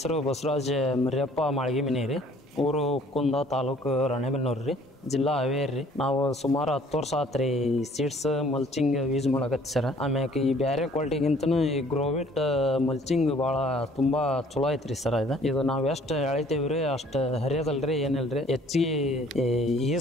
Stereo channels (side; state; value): both; normal; correlation 0.56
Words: ಬಸವರಾಜ್ ಮರಿಯಪ್ಪ ಮಾಳ್ಗಿಮಿನಿ ರೀ. ಊರು ಕುಂದ, ತಾಲೂಕು ರಾಣೆಬೆನ್ನೂರು ರೀ, ಜಿಲ್ಲಾ ಹಾವೇರಿ ರೀ. ನಾವು ಸುಮಾರು 10 ವರ್ಷ ಆತು ರೀ ಸೀಡ್ಸ್ ಮಲ್ಚಿಂಗ್ ಯೂಸ್ ಮಾಡಕತ್ತಿ ಸರ್. ಆಮ್ಯಾಕೆ ಈ ಬೇರೆ ಕ್ವಾಲಿಟಿಗಿಂತನೂ ಈ ಗ್ರೋವಿಟ್ ಮಲ್ಚಿಂಗ್ ಭಾಳ ತುಂಬ ಚಲೋ ಐತ್ರಿ ಸರ್. ಇದು ನಾವು ಎಷ್ಟು ಎಳಿತೀವಿ ರೀ ಅಷ್ಟು ಹರಿಯೋದಲ್ರಿ, ಏನಿಲ್ರಿ, ಹೆಚ್ಚಿಗೆ